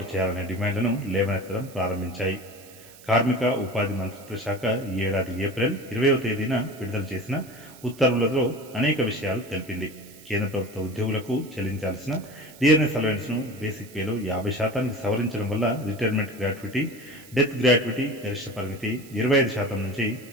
చేయాలనే డిమాండ్లను లేవనెత్తడం ప్రారంభించాయి. కార్మిక ఉపాధి మంత్రిత్వ శాఖ ఈ ఏడాది ఏప్రిల్ 20వ తేదీన విడుదల చేసిన ఉత్తర్వులలో అనేక విషయాలు తెలిపింది. కేంద్ర ప్రభుత్వ ఉద్యోగులకు చెల్లించాల్సిన డిఆర్ఎస్ అలవెన్స్ను బేసిక్ పేలో 50%కి సవరించడం వల్ల రిటైర్మెంట్ గ్రాట్యుటీ, డెత్ గ్రాట్యుటీ గరిష్ట పరిమితి 25% నుంచి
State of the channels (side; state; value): right; noise; hiss, 21 dB below the sound